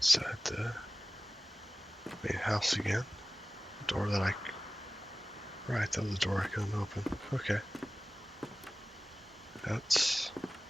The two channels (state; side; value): normal; both; correlation 0.97